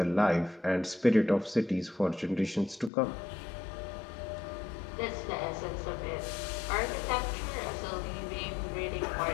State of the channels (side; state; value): right; drops out; at 2.9 s